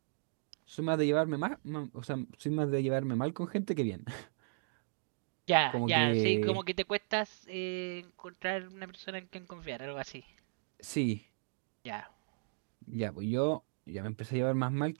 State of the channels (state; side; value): silent; left; digital silence